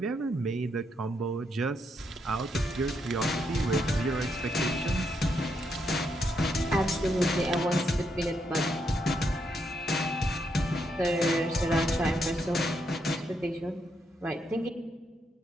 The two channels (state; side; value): normal; both; correlation 0.78